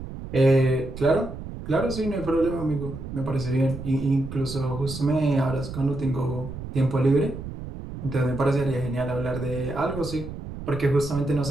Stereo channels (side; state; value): right; noise; rumble, 10 dB below the sound